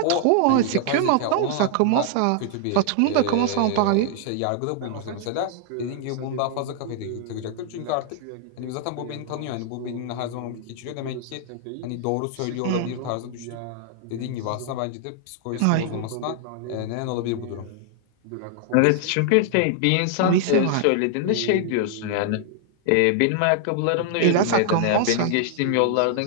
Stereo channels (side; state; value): both; different; correlation 0.00